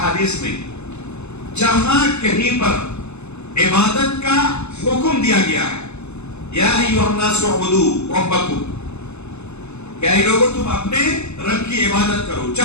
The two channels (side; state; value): right; late; 0.81 ms